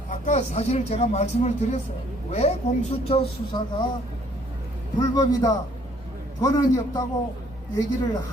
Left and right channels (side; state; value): both; normal; correlation 0.62